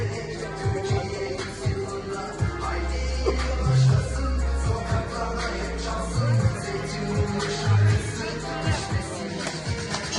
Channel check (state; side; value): identical; both; correlation 1.00